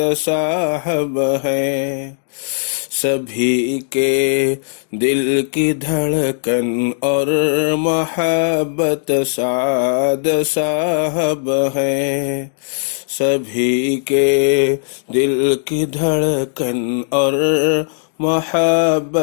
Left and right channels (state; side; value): silent; right; digital silence